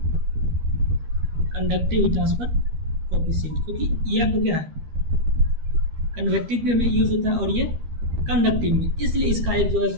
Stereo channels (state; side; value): late; left; 13 ms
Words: conductive heat transfer coefficient, क्योंकि ये आपको क्या है कन्वेक्टिव में यूज होता है और ये कंडक्टिव में, इसलिए इसका एक जो है